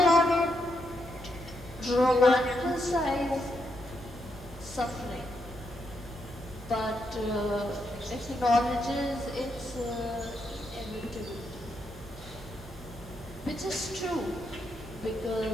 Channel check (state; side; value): normal; both; correlation 0.80